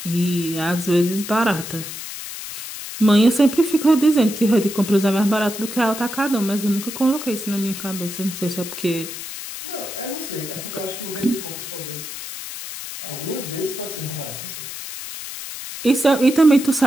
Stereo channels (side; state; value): left; noise; hiss, 9 dB below the sound